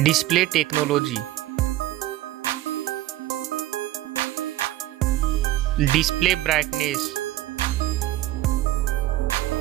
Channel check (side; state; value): left; quieter; 15.7 dB